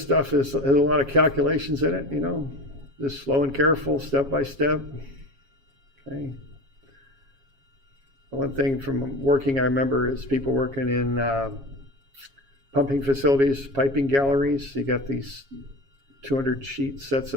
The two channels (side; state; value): left; late; 7.3 ms